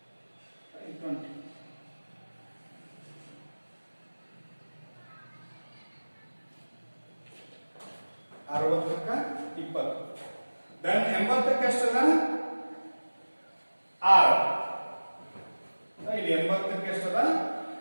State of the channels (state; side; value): inverted; both; correlation -1.00